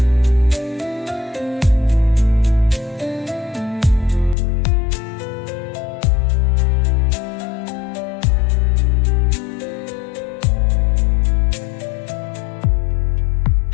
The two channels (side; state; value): right; drops out; at 4.4 s